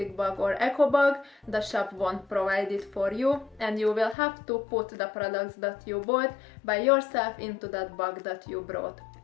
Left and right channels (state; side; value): drops out; right; at 4.2 s